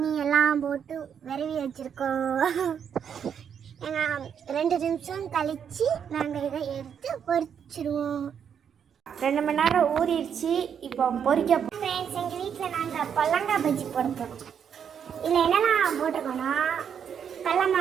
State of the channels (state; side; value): quieter; left; 7.9 dB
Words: எல்லாம் போட்டு விரவி வச்சுருக்கோம். 2 நிமிஷம் கழித்து நாங்கள் இதை எடுத்து பொரிச்சிடுவோம். 2 மணி நேரம் ஊறிடுச்சு. இப்போ பொரிக்க ஃப்ரெண்ட்ஸ், எங்கள் வீட்டில் நாங்கள் பொல்லங்காய் பஜ்ஜி போட போகிறோம். இதில் என்னெல்லாம் போட்டிருக்கோன்னா கடல